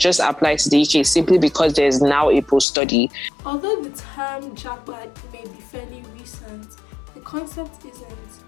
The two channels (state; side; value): drops out; right; at 2.7 s